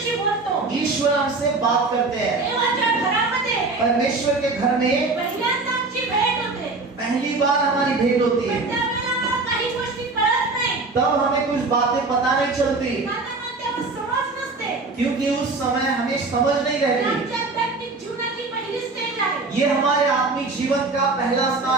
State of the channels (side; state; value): left; quieter; 3.6 dB